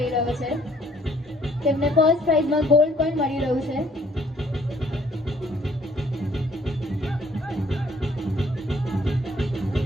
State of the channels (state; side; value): normal; both; correlation 0.62